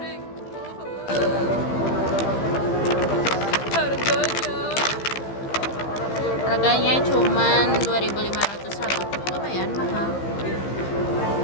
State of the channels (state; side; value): late; right; 15 ms